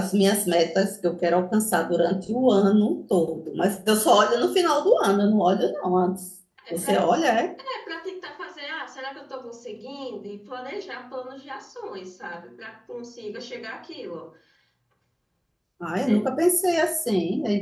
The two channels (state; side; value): identical; both; correlation 1.00